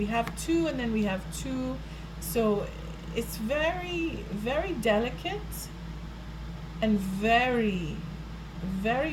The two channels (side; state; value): both; identical; correlation 1.00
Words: have two and then we have two. So it's very, very delicate and very,